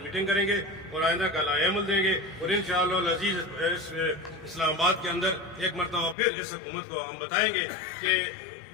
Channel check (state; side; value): drops out; right; at 6.2 s